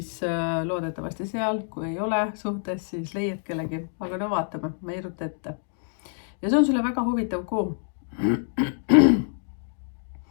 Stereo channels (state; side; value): silent; right; digital silence